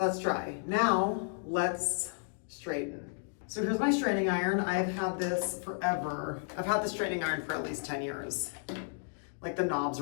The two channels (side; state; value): right; silent; digital silence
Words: dry. Now let's straighten. So here's my straightening iron. I've had this forever. I've had the straightening iron for at least 10 years. Like the knobs